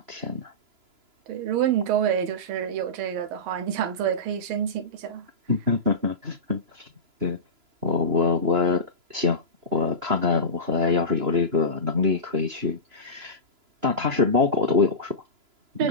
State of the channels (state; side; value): late; left; 3.0 ms